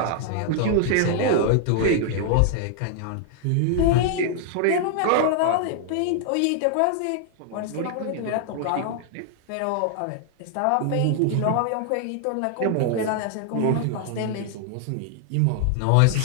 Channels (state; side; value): different; both; correlation 0.00